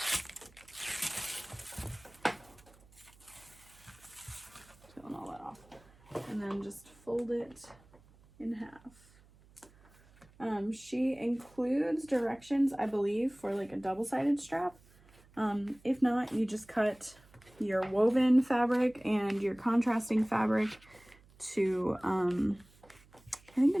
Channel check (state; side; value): noise; right; hum, 27 dB below the sound